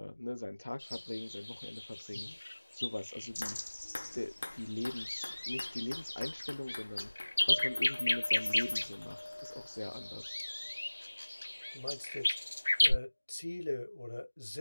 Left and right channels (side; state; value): both; inverted; correlation -1.00